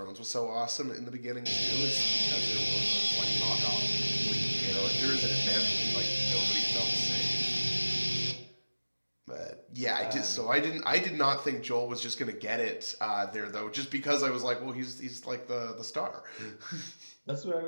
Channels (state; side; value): inverted; both; correlation -1.00